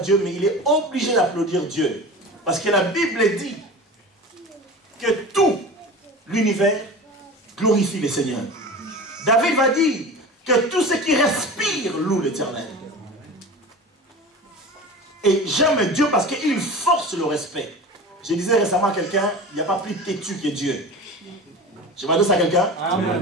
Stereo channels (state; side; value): normal; both; correlation 0.33